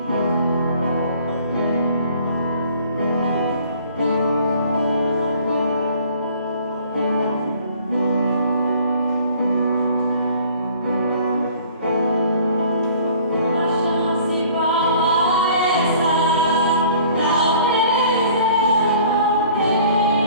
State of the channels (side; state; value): both; inverted; correlation -0.53